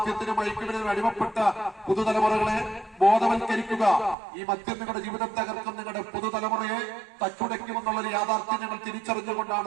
മയക്കുമരുന്നിനും അടിമപ്പെട്ട പുതുതലമുറകളെ ബോധവൽക്കരിക്കുക. ഈ മദ്യം നിങ്ങളുടെ ജീവിതം തകർക്കും, നിങ്ങളുടെ പുതുതലമുറയെ തച്ചുടയ്ക്കുമെന്നുള്ളൊരു യാഥാർത്ഥ്യം ഞങ്ങൾ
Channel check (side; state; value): left; drops out; at 4.2 s